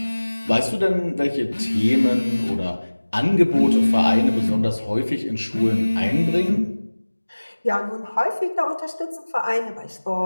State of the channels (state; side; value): inverted; both; correlation -1.00